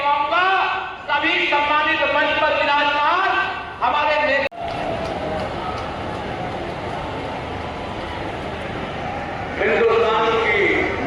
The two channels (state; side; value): identical; both; correlation 1.00